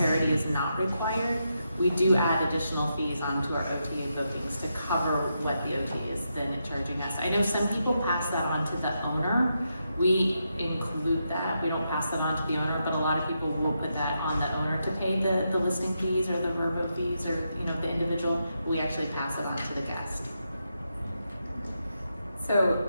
is not required, we do add additional fees onto our OTA bookings to cover what the OTA is then charging us. I know some people pass that on to the owner, We include that, we don't pass that on to the owner, but a lot of people will put that on the owner to pay the listing fees or the verbo fees or, you know, the individual. We actually pass it on to the guest. So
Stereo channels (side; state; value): both; inverted; correlation -0.84